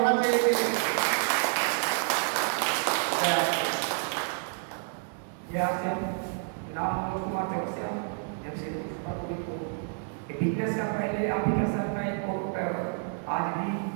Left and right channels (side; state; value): left; silent; 58 dB below the other